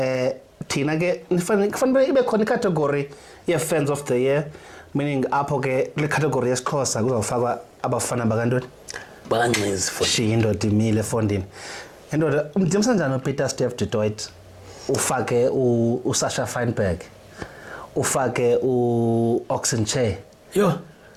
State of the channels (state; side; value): identical; both; correlation 1.00